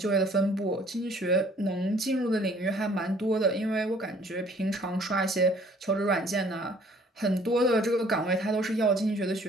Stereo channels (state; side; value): normal; both; correlation 0.57